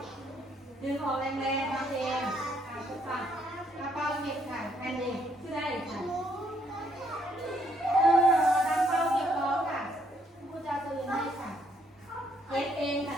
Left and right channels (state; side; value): normal; both; correlation 0.70